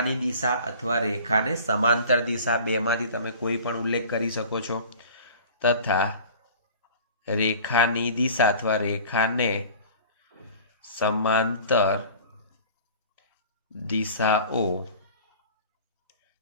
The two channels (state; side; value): inverted; both; correlation -0.43